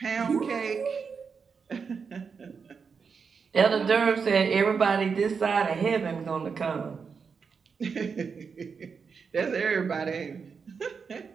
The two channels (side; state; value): left; quieter; 5.7 dB